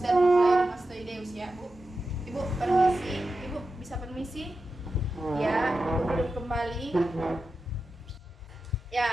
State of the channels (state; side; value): normal; both; correlation 0.91